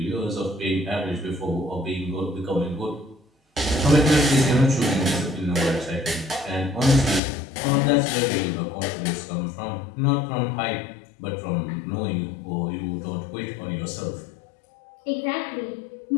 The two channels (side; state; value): right; drops out; at 7.2 s